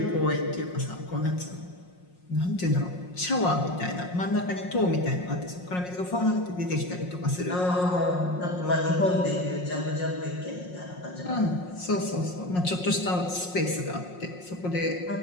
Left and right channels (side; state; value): right; late; 5.5 ms